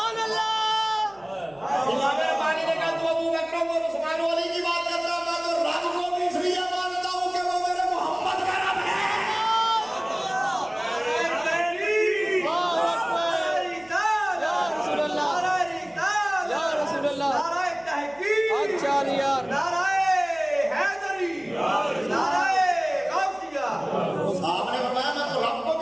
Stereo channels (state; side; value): noise; right; hum, 29 dB below the sound